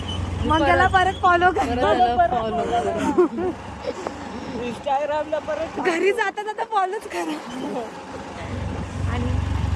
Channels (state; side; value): identical; both; correlation 1.00